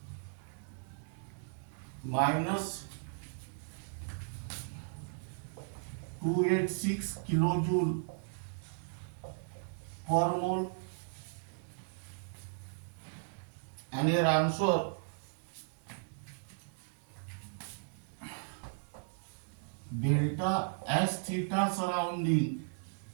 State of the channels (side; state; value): left; silent; digital silence